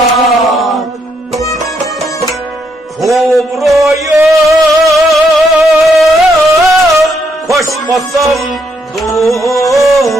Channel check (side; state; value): both; normal; correlation 0.75